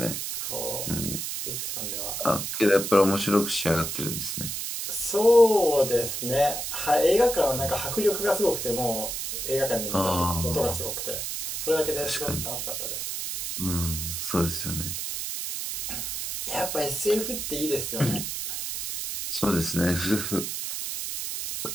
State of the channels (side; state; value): right; noise; hiss, 4 dB below the sound